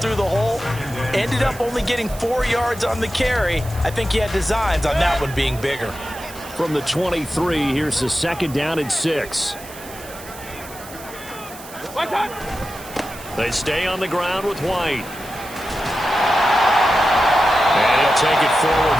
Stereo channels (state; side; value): noise; right; hiss, 16 dB below the sound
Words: the hole. Ended up only getting 4 yards on the carry. I think he had designs on that one being bigger. From the 23, here's the second down and 6. They stay on the ground with White. And he'll take it forward